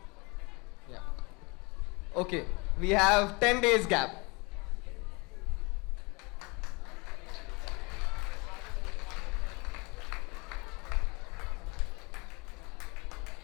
Yeah. Okay, we have 10 days gap.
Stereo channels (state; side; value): quieter; right; 28.0 dB